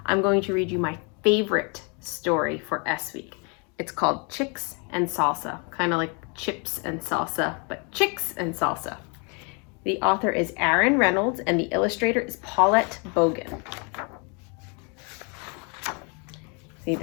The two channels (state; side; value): quieter; right; 34.4 dB